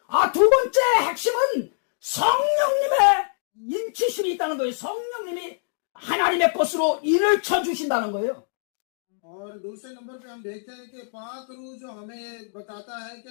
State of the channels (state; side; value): silent; right; digital silence